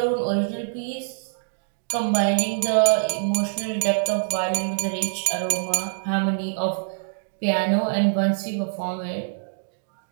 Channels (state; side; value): silent; left; digital silence